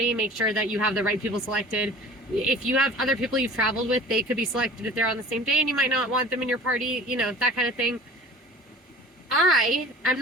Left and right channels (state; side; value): normal; both; correlation 0.43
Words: Make sure that you have the right people selected. If you have other people you've traveled with, they could be selected if they're on the same day and you might not want them in your party, you know, that kind of thing. I am